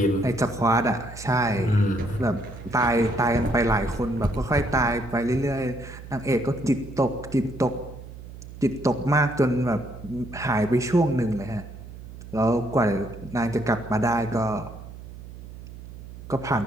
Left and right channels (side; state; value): right; noise; hum, 14 dB below the sound